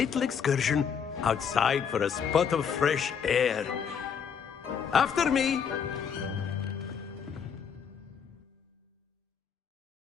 excursion outside for a spot of fresh air. After me.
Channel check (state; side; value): quieter; right; 7.2 dB